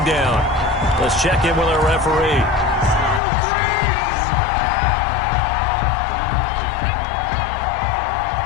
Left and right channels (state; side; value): drops out; right; at 3.2 s